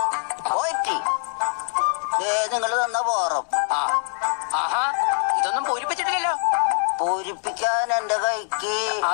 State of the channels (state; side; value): silent; right; digital silence